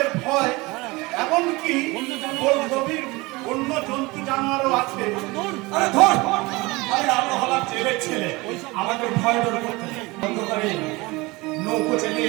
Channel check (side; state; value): left; quieter; 23.1 dB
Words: ভয়, এমনকি গভীর অন্য জন্তু জানোয়ারও আছে। আরে ধর, আরে আমরা হলাম জেলের ছেলে, আমাদের ভয় ডর করতে নেই। অন্ধকারে নৌকো